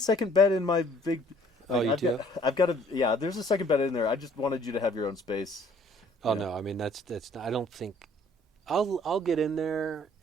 bed in my big. Oh, you do? I've got a yeah. There's a second bed in there. I just wanted you to have your own space. Oh, Yeah. no. I mean, that's not, I don't think. I'll get in there,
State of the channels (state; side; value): normal; both; correlation 0.58